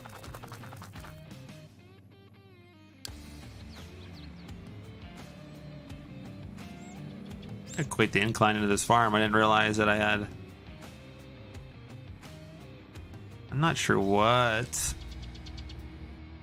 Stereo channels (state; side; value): identical; both; correlation 1.00